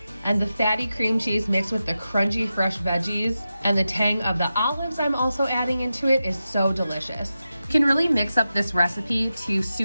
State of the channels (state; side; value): inverted; both; correlation -0.91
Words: And the fatty cream cheese mixed with the crunchy fresh veggies and the tang of the olives I'm also adding into it is so delicious. You can really mix up this recipe to